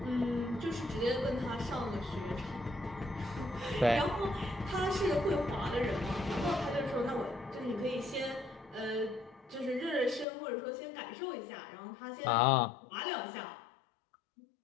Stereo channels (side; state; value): right; drops out; at 10.2 s